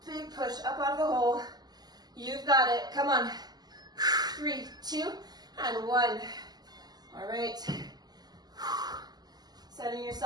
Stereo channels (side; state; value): left; late; 0.20 ms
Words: Big push up out of the hole. You've got it. Come on. 3, 2, and 1. All right. Setting